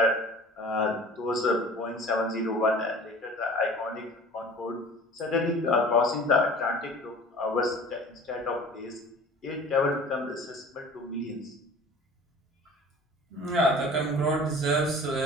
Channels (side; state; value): both; normal; correlation 0.43